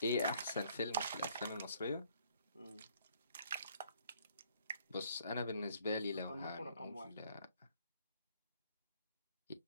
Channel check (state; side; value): inverted; both; correlation -0.63